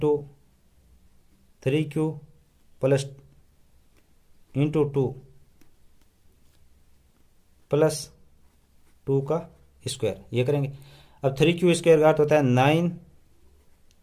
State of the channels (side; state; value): both; identical; correlation 1.00